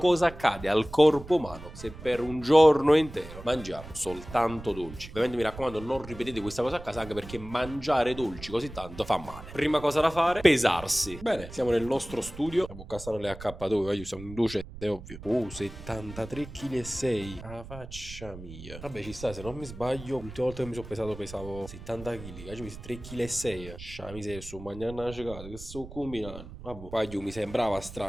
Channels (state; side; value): noise; right; rumble, 14 dB below the sound